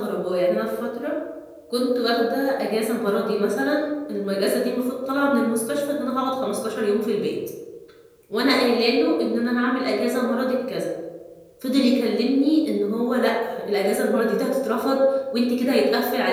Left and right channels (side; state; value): both; identical; correlation 1.00